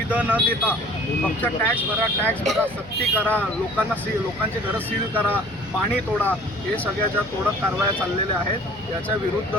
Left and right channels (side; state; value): left; noise; hum, 22 dB below the sound